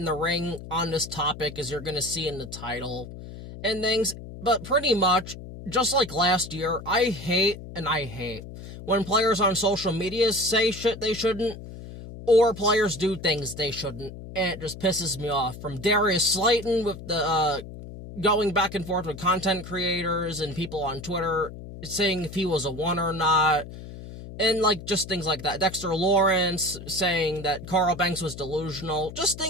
the ring on this topic, as you're going to see in the title and things, but pretty much, just like last year, I hate when players on social media say shit they shouldn't, or players do things they shouldn't, and it just pisses me off. From Darius Slayton with the, going back and forth with content creators and people on Twitter saying if he was a one or not, and, like, just things like that. Dexter Lawrence saying that Carl Banks was delusional. Just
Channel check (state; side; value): noise; left; hum, 13 dB below the sound